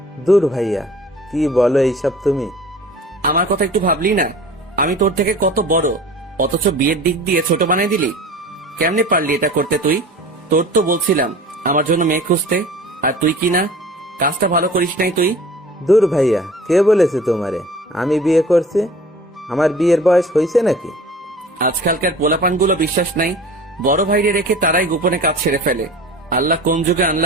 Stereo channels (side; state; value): both; normal; correlation 0.43